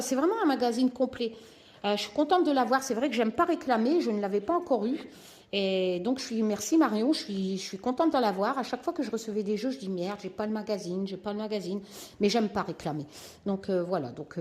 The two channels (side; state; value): both; identical; correlation 1.00